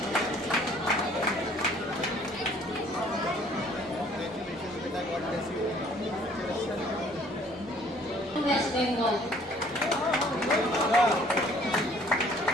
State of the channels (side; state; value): both; normal; correlation 0.57